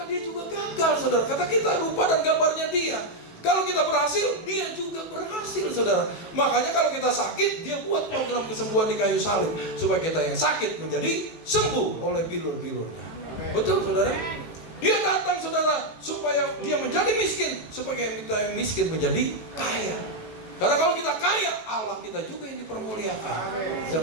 dia juga gagal saudara. Kata kita rupa dan gambarnya dia. Kalau kita berhasil, dia juga berhasil saudara. Makanya kalau kita sakit, dia buat program kesembuhan di kayu salib, supaya kita yang sakit menjadi sembuh oleh bilur-bilurnya. Betul saudara? Dia datang saudara supaya dia menjadi miskin, supaya kita yang miskin menjadi kaya. Karena kalau kita kaya, Allah kita juga yang dipermuliakan. Bisa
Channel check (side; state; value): right; late; 18 ms